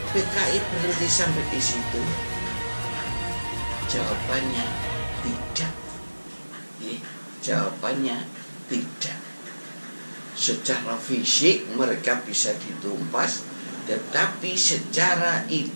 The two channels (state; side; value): inverted; both; correlation -1.00